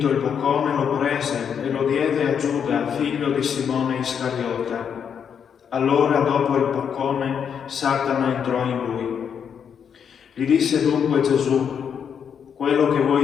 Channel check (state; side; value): quieter; right; 7.5 dB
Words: il boccone lo prese e lo diede a Giuda, figlio di Simone Iscariota. Allora, dopo il boccone, Satana entrò in lui. Gli disse dunque Gesù: quello che